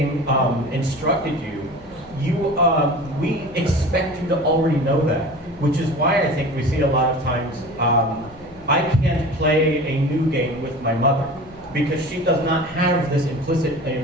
instructed you, we expect you to already know that. Which is why I think we see a lot of times, I can't play a new game with my mother because she does not have this implicit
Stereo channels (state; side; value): noise; left; hum, 23 dB below the sound